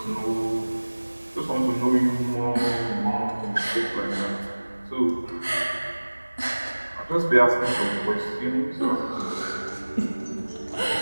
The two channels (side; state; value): both; inverted; correlation -1.00